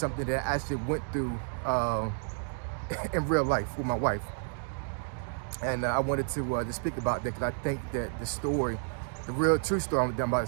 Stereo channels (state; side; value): silent; left; 57 dB below the other